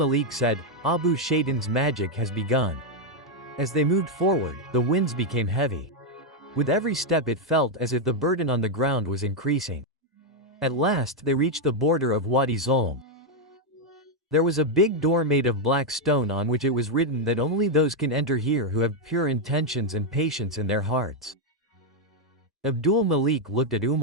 said, Abu Shaitan's magic has begun. As they moved forward, the winds became heavy. With every step it felt as if the burden on the ground was increasing. At last they reached the border of Wadi Zulm. There was a big door made of black stone on which it was written that only those can enter here who have pure intentions and patience in their hearts. Abdul Malik looked at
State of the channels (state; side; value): normal; both; correlation 0.01